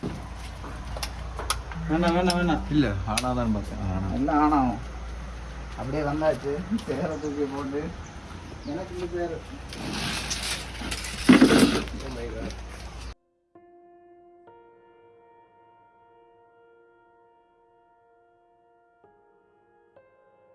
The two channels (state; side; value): identical; both; correlation 1.00